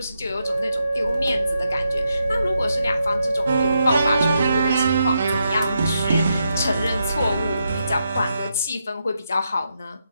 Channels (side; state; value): both; inverted; correlation -0.83